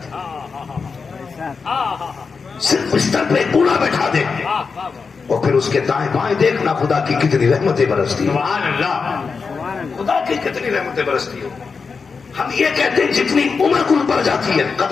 صرف بستر پہ بوڑھا بیٹھا دے, اور پھر اس کے دائیں بائیں دیکھنا خدا کی کتنی رحمتیں برستی ہو. سبحان اللہ, خدا کی کتنی رحمتیں برستی ہو. ہم یہ کہتے ہیں جتنی عمر کل پڑ جاتی ہے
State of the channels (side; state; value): right; quieter; 5.1 dB